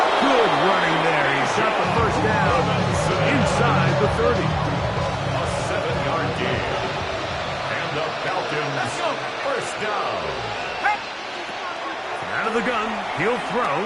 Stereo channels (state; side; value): identical; both; correlation 1.00